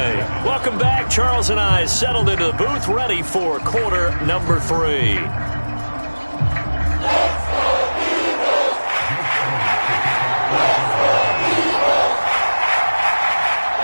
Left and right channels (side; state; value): both; inverted; correlation -1.00